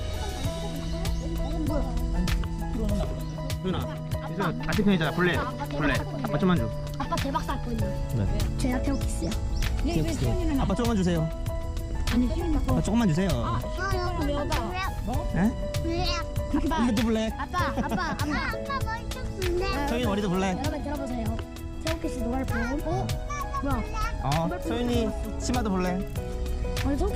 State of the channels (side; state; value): both; identical; correlation 1.00